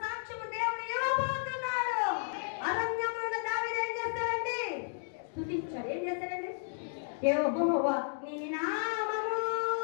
సాక్ష్యము దేవుడు ఇవ్వబోతున్నాడు. అరణ్యంలో దావీదు ఏం చేస్తాడండి? స్తుతించాడు. ఏం చేస్తాడండి? యెహోవా నీ నామము.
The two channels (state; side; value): silent; right; digital silence